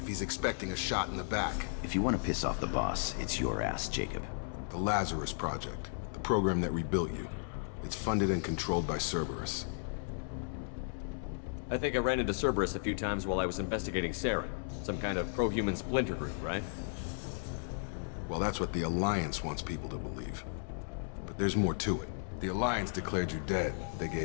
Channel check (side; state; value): right; silent; digital silence